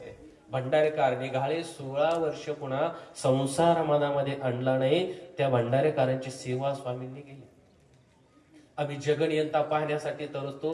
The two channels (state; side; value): identical; both; correlation 1.00